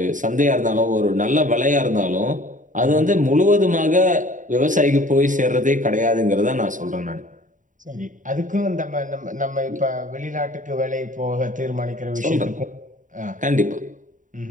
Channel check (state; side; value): late; left; 0.37 ms